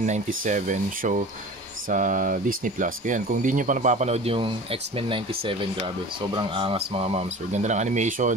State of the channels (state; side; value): normal; both; correlation 0.38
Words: 97 show sa Disney Plus. Kaya kung di nyo pa napapanood yung X-Men 97, grabe, sobrang angas mga ma'am, sir. Ganda ng